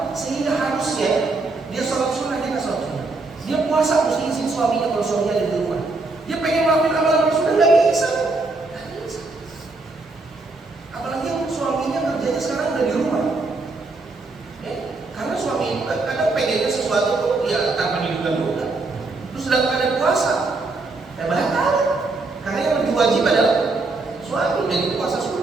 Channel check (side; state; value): left; quieter; 3.5 dB